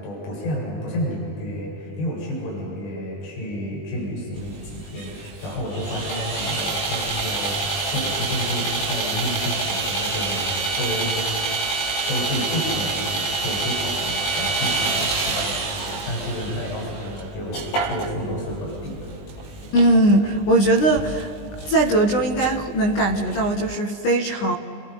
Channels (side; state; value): right; late; 20 ms